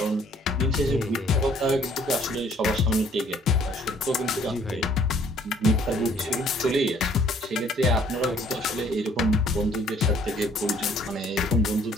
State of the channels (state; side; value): normal; both; correlation 0.60